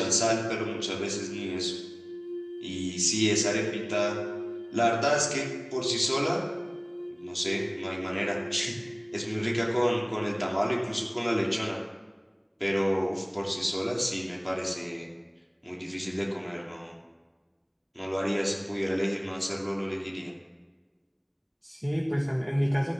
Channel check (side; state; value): both; identical; correlation 1.00